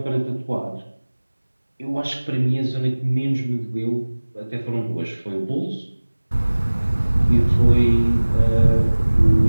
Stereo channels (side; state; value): both; inverted; correlation -1.00